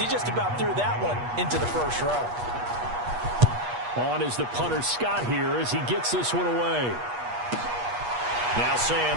just about threw that one into the first row. On is the punter Scott here as he gets this one away. Now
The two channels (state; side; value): late; left; 8.3 ms